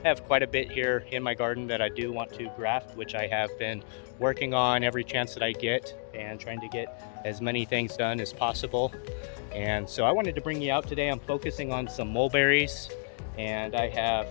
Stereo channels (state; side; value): silent; right; digital silence